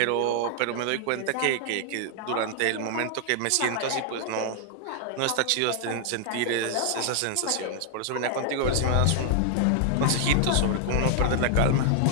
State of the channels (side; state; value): both; different; correlation 0.00